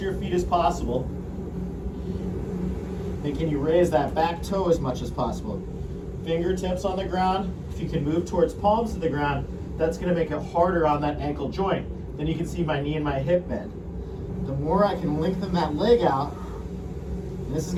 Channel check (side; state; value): both; identical; correlation 1.00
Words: your feet as possible. And can you raise that back toe as much as possible? Fingertips on the ground. If you can move towards palms to the ground, that's gonna make it harder on that ankle joint. Then you can see my knee and my hip bend. The more I can lengthen that leg out, and this is